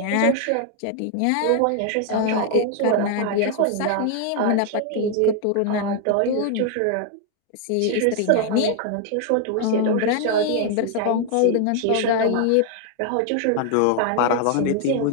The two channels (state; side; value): different; both; correlation 0.00